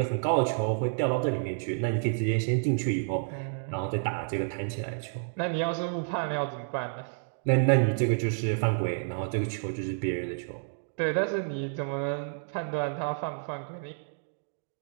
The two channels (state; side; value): silent; left; digital silence